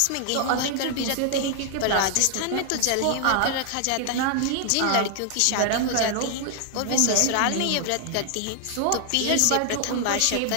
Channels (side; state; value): both; different; correlation 0.00